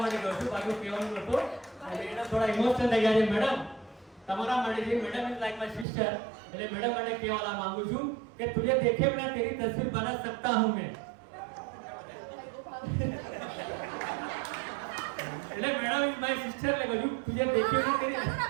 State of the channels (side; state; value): left; drops out; at 5.9 s